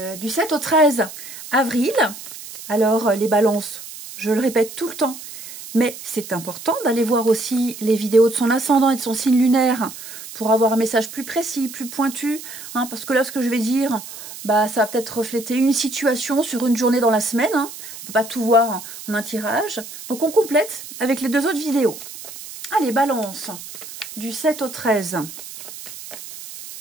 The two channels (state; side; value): noise; right; hiss, 13 dB below the sound